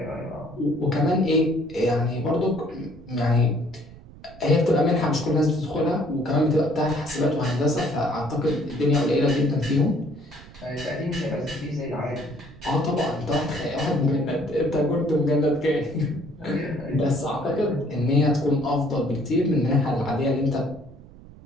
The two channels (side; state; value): right; noise; rumble, 20 dB below the sound